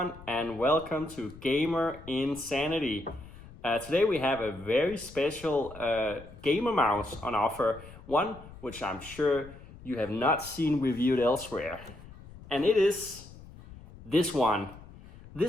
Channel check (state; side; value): noise; left; rumble, 18 dB below the sound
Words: and welcome to Gamer Insanity. Today we have a very special gamer mouse on offer, one which I'm sure you have not seen reviewed elsewhere. And it is this one,